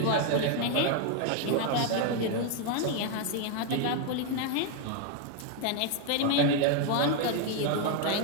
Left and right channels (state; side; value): different; both; correlation 0.01